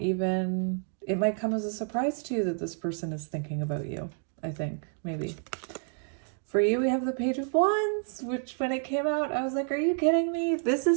it might come as a surprise to you that this person is thinking about you, I think, maybe. For you, we have the Page of Wands, which when it came out, I was like, are you kidding me? This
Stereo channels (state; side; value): silent; left; 58 dB below the other